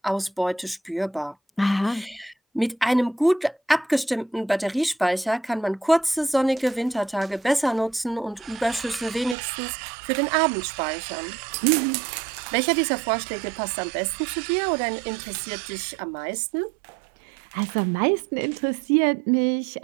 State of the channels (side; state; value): left; drops out; at 9.3 s